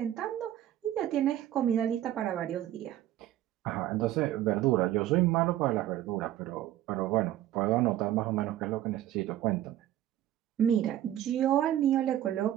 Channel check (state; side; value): quieter; left; 12.8 dB